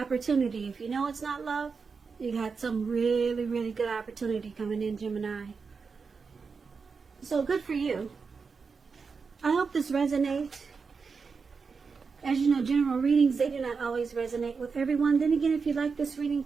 If you know it's not love, you got some really, really good opportunity coming in, Gemini. So good for you. I hope this resonates. As you know, general readings, they do not always resonate with everyone. Then again, if you like this reading,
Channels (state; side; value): quieter; left; 5.1 dB